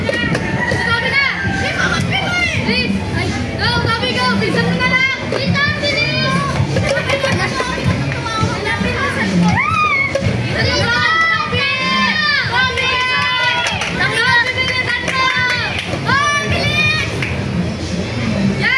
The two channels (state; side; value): identical; both; correlation 1.00